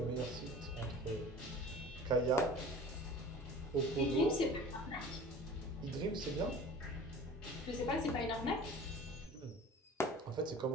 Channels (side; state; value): both; normal; correlation 0.41